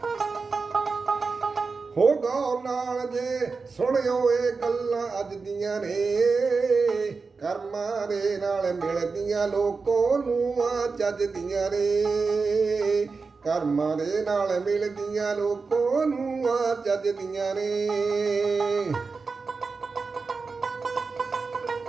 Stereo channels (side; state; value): left; quieter; 4.5 dB